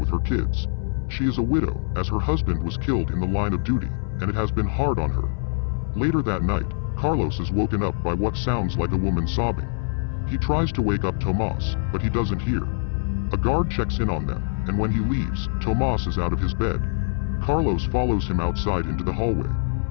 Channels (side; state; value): right; silent; digital silence